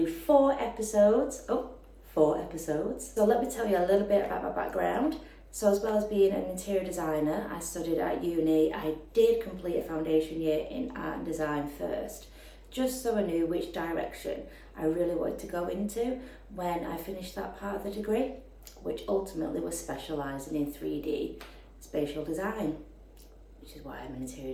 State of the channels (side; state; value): both; identical; correlation 1.00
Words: do 4 episodes. So let me tell you a little bit about my background. So as well as being an interior designer, I studied at uni. I did complete a foundation year in art and design first, just so I knew which direction I really wanted to go into when I finished that part of the degree, which ultimately was specialising in 3D spatial design, which is why I'm an